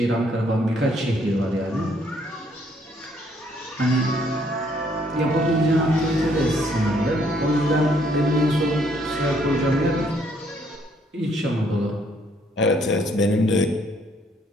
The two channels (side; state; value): both; normal; correlation 0.67